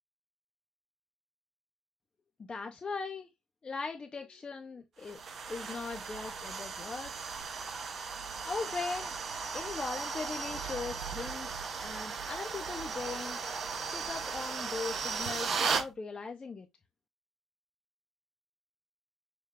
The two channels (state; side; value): normal; both; correlation 0.76